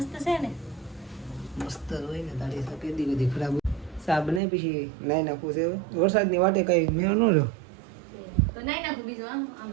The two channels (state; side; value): drops out; left; at 4.4 s